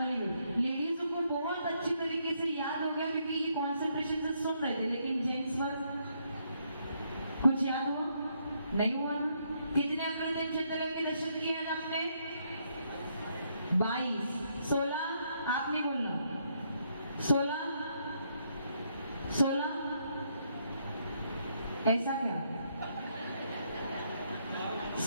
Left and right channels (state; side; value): inverted; both; correlation -0.74